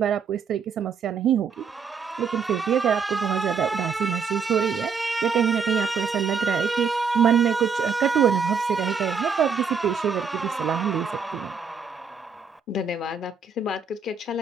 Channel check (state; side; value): quieter; left; 5.7 dB